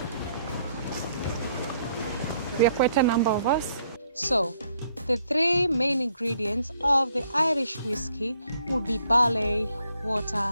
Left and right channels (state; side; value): inverted; both; correlation -0.69